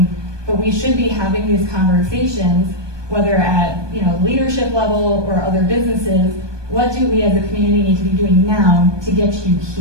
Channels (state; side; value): late; left; 1.2 ms